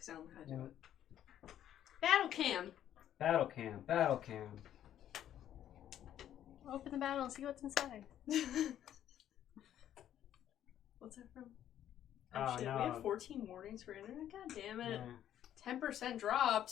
I don't know how to do it. Battle cam! Battle cam, battle cam. Open the battle and see what's inside. What's that from? Oh, Shit, no. we have 14 warnings for internet? God damn it. Yeah, 10%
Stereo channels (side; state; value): right; quieter; 11.1 dB